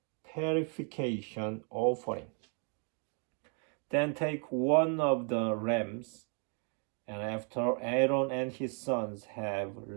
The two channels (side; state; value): left; quieter; 39.6 dB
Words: purification offering. Then take one of the rams, and after Aaron and his sons have